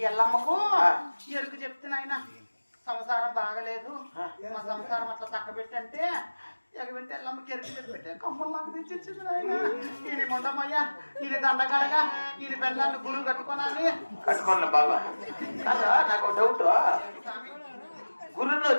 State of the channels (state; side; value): inverted; both; correlation -1.00